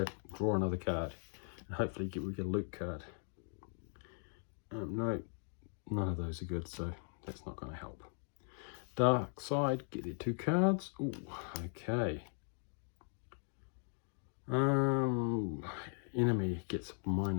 draw another card, and hopefully we get a Luke card. No, none of those are good, so that's not going to help. Dark side, get their 2 cards. Ooh, okay. Enemy gets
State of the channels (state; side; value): silent; right; 52 dB below the other